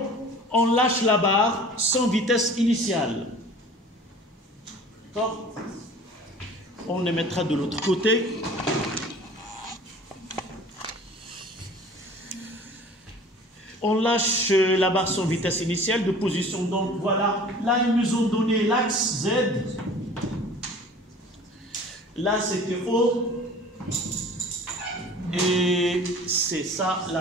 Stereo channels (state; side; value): normal; both; correlation 0.45